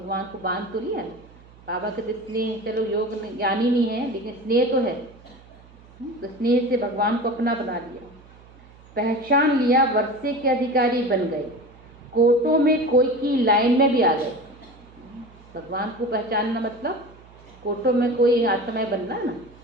को बांध तो लिया ना। बाबा कहते स्नेह, चलो योग ज्ञानी नहीं है लेकिन स्नेह तो है, तो स्नेह से भगवान को अपना बना लिया। पहचान लिया, वर्षे के अधिकारी बन गए, कोटों में कोई की लाइन में भी आ गए। भगवान को पहचानना मतलब कोटों में कोई आत्माएं बनना ना।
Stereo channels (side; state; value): right; noise; hum, 24 dB below the sound